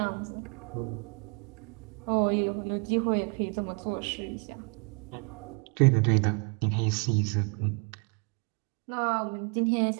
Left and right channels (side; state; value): left; quieter; 36.4 dB